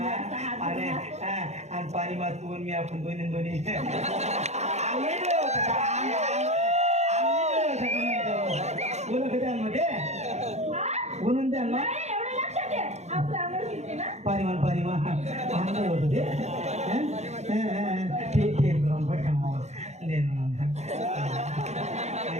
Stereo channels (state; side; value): late; left; 0.32 ms